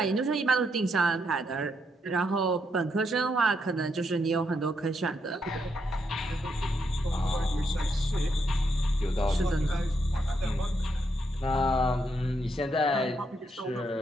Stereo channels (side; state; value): both; normal; correlation 0.78